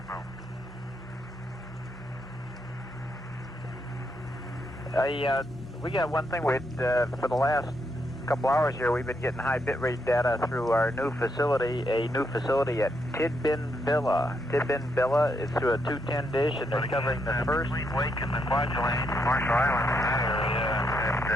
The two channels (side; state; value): both; normal; correlation 0.78